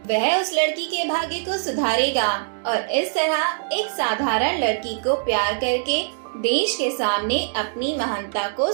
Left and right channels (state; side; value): silent; left; digital silence